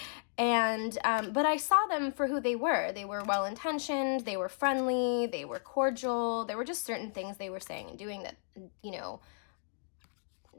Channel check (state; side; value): silent; right; digital silence